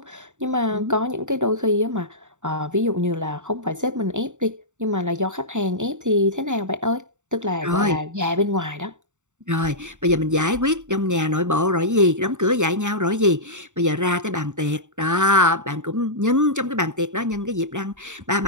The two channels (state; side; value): late; left; 0.85 ms